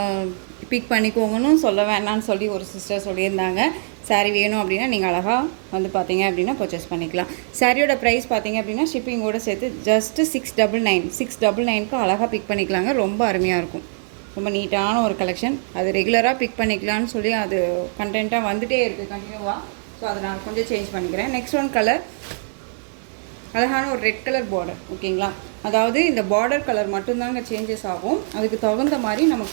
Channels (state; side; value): silent; left; digital silence